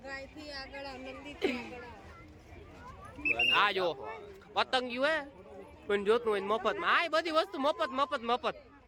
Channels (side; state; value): both; identical; correlation 1.00